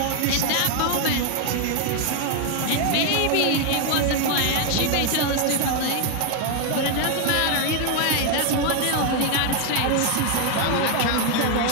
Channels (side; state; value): both; different; correlation 0.00